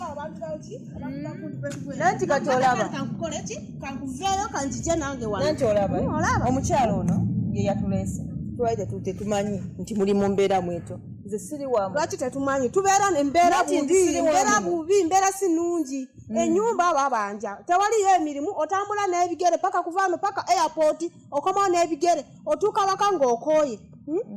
abantu baki? Nanti katolaba. Kankukole ki? Kankuveyo kanjije nange wano. Nanti olaba. Omukyalo ono ye yatulese. Twaide tute tumanyi nti muli mu mbeera mweto. Nze siri wamu. Lwaki tetumanyi tubeera n'embeera bubi, mbeera si nnungi. Ennyumba babanja. Tewaliyo emirimu otambula n'ebigere paka kuvaano paka airport okomawo n'ebigere otuuka waka ng'okooye.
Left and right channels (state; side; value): identical; both; correlation 1.00